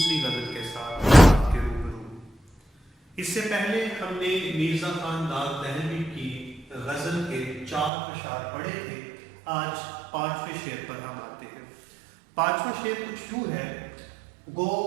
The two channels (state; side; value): drops out; left; at 7.9 s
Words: غزل کے ساتھ آپ کے روبرو ہوں۔ اس سے پہلے ہم نے میرزا خان داغ دہلوی کی غزل کے 4 اشعار پڑھے تھے۔ آج 5ویں شعر پر ہم آتے ہیں۔ 5واں شعر کچھ یوں ہے: گو